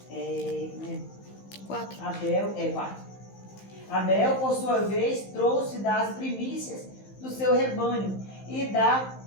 4. Abel, por sua vez, trouxe das primícias do seu rebanho e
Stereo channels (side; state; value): right; late; 15 ms